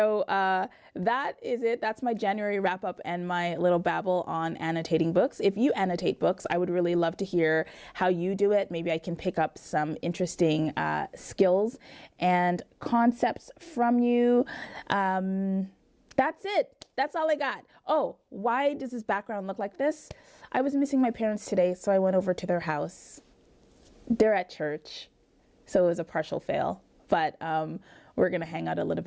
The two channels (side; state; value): both; identical; correlation 1.00